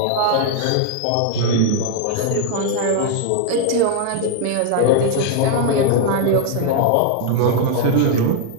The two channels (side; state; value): both; different; correlation 0.00